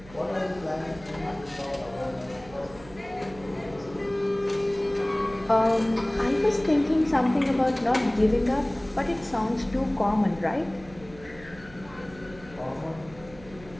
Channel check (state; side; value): noise; right; hum, 20 dB below the sound